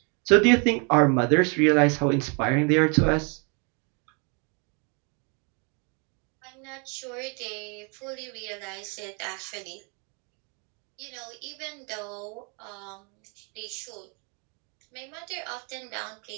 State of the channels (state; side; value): quieter; left; 35.1 dB